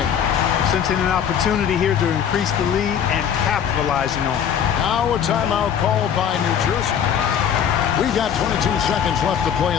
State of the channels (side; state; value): right; quieter; 8.5 dB